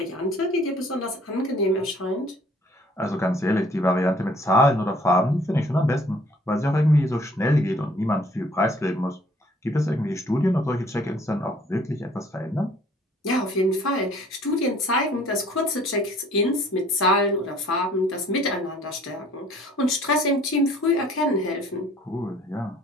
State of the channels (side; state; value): both; normal; correlation 0.57